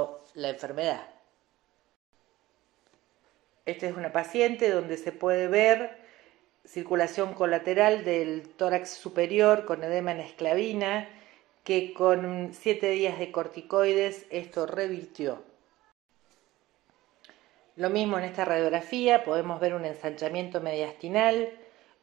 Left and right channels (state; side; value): quieter; left; 17.3 dB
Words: la enfermedad. Esta es una paciente donde se puede ver circulación colateral del tórax superior con edema en esclavina, que con 7 días de corticoides esto revirtió. Lo mismo en esta radiografía, podemos ver un ensanchamiento mediastinal